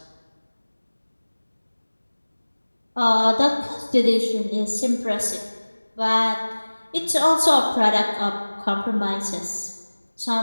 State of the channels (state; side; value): inverted; both; correlation -1.00